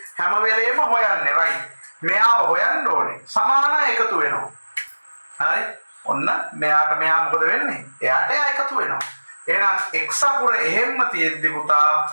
හැම වෙලේම හොයන්නේ. right? මෙයාව හොයන්න ඕනේ. සමානයි එකතු වෙනවා. හරි? ඔන්න මෙයාට මෙයා මොකද වෙන්නේ? එයාට එයා එකතු වෙනවා. එහෙනම් x අකුර එහෙම්ම තියෙද්දි පුතා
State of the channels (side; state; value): both; inverted; correlation -1.00